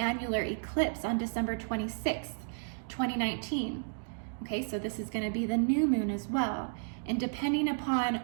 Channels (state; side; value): silent; left; digital silence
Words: eclipse on December 26th, 2019. Okay, so this is going to be the new moon as well. And depending